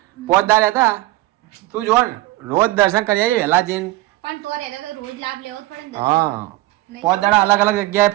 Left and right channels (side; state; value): left; quieter; 18.4 dB